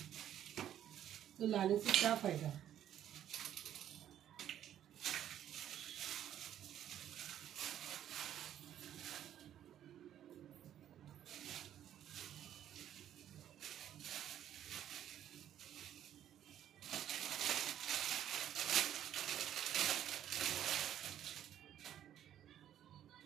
तो लाने से क्या फ़ायदा।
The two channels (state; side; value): quieter; left; 10.9 dB